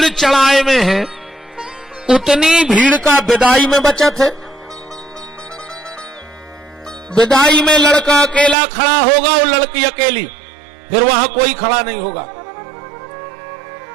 चढ़ाए में है उतनी भीड़ का विदाई में बचत है। विदाई में लड़का अकेला खड़ा होगा और लड़की अकेली, फिर वहां कोई खड़ा नहीं होगा।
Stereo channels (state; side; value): drops out; left; at 8.6 s